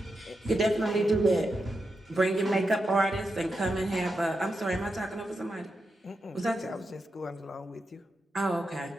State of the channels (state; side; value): normal; both; correlation 0.87